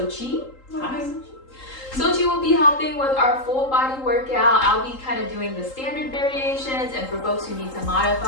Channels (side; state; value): right; late; 3.8 ms